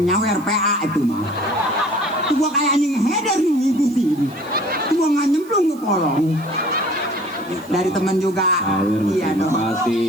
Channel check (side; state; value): right; noise; hiss, 23 dB below the sound